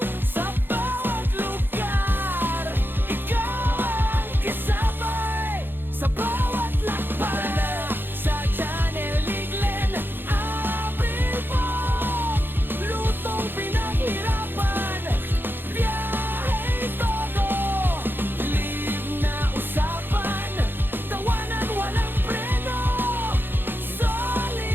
sa bawat lugar, ikaw ang kasabay. Sa bawat lakbay, sa channel ni Glenn Abril Vlog. Lutong pinaghirapan, biyahe todo, live na usapan, tawanan walang preno.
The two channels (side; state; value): left; late; 0.099 ms